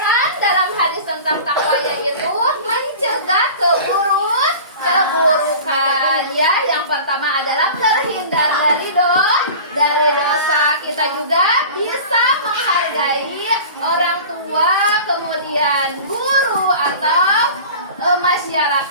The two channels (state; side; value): inverted; both; correlation -0.38